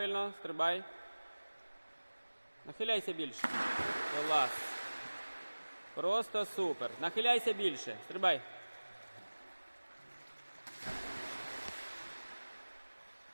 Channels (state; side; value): inverted; both; correlation -1.00